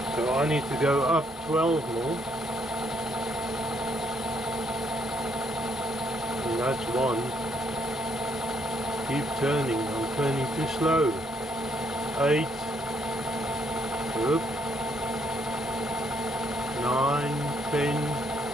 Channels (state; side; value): normal; both; correlation 0.71